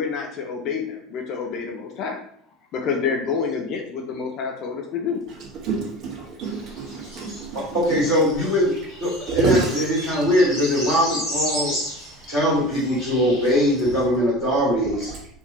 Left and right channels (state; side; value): normal; both; correlation 0.35